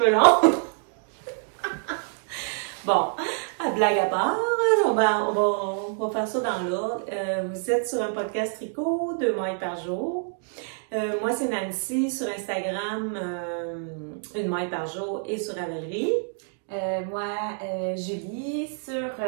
longs. Bon, à blague à part, on va faire ça dans l'ordre. Vous êtes sur un podcast tricot, 2 mailles par jour. Moi, c'est Nancy sur Instagram, 1 maille par jour et sur Ravelry. Julie, sur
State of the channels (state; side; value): silent; left; 59 dB below the other